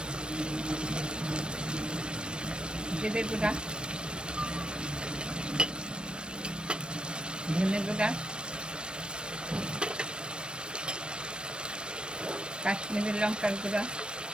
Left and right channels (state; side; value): late; left; 0.054 ms